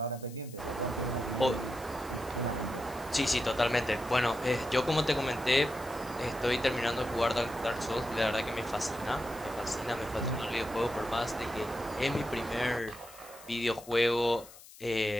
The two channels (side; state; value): left; noise; hiss, 19 dB below the sound